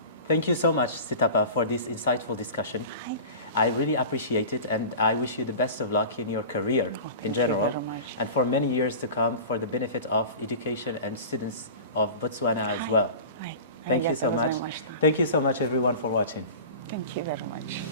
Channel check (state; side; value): inverted; both; correlation -0.35